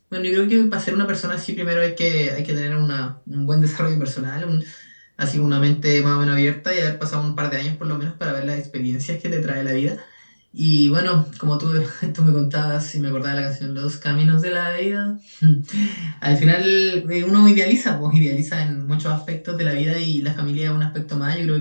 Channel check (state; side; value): inverted; both; correlation -1.00